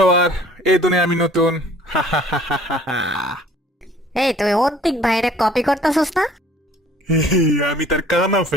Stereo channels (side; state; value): both; normal; correlation 0.53